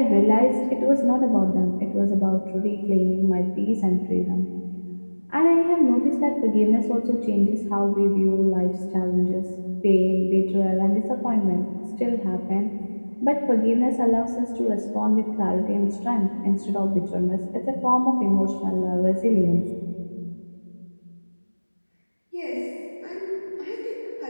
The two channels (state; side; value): inverted; both; correlation -1.00